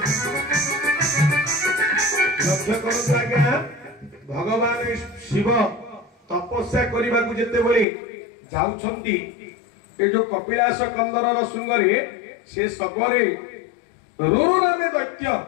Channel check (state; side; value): drops out; right; at 7.9 s